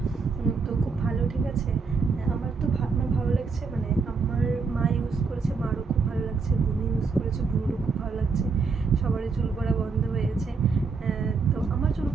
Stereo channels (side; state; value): left; quieter; 4.8 dB